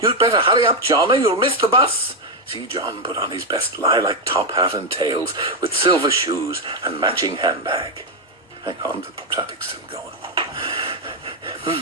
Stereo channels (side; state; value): both; normal; correlation 0.04